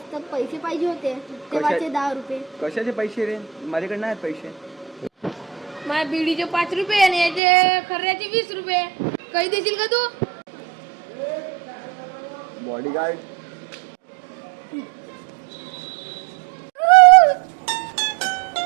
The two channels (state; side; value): drops out; left; at 7.4 s